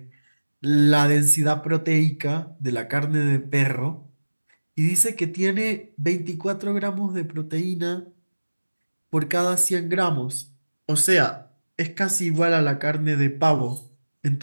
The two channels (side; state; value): both; inverted; correlation -1.00